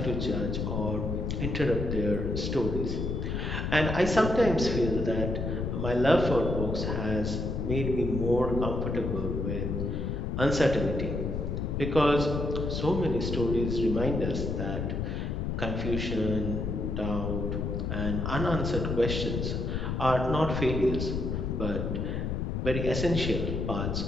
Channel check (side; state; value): left; noise; rumble, 2 dB below the sound